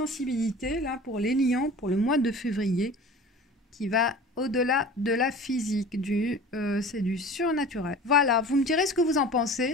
là pour les lions pour le mois de février qui va au-delà de la physique, c'est du surnaturel. Voilà, vous me direz ce que vous en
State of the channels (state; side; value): normal; both; correlation 0.40